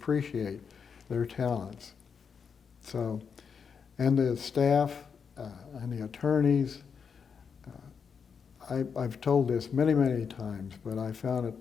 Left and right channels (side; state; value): right; quieter; 6.4 dB